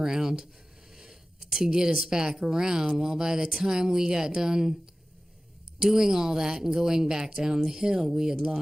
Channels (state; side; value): normal; both; correlation 0.96